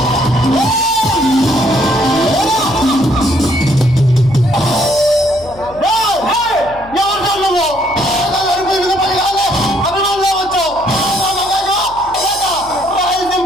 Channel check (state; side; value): noise; left; hum, 21 dB below the sound